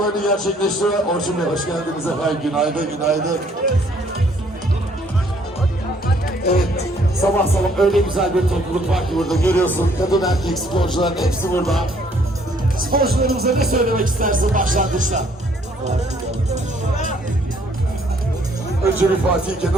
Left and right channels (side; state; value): both; normal; correlation 0.64